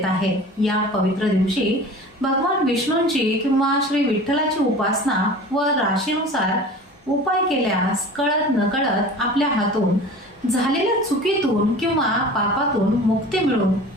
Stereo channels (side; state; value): both; normal; correlation 0.39